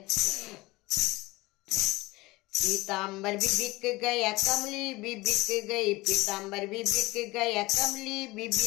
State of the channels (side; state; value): right; quieter; 21.2 dB